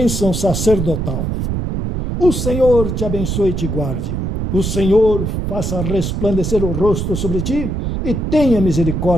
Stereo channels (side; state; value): right; noise; rumble, 2 dB below the sound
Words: sacerdotal. O Senhor te abençoe e te guarde. O Senhor faça resplandecer o rosto sobre ti e tenha